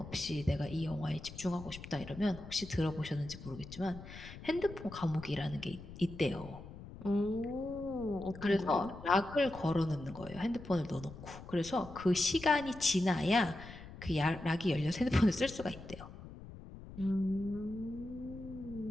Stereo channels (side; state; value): left; noise; rumble, 14 dB below the sound